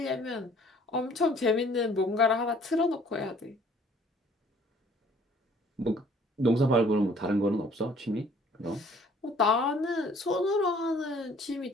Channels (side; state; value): both; normal; correlation 0.57